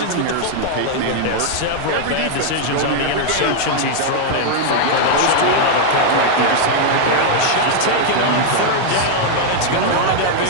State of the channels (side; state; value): both; different; correlation 0.00